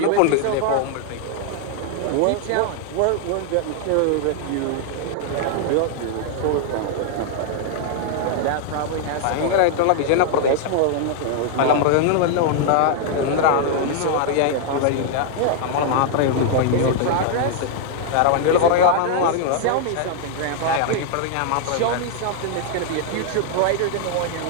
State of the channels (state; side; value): different; both; correlation 0.00